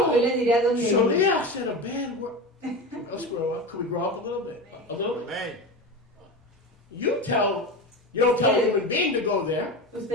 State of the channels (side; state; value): both; normal; correlation 0.25